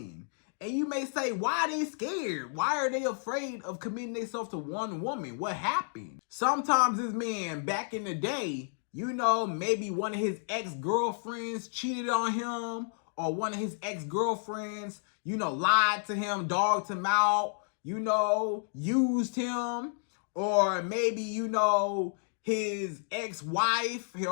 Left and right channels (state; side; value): silent; right; digital silence